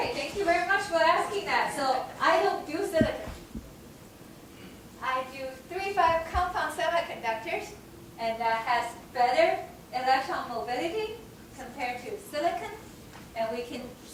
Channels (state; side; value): identical; both; correlation 1.00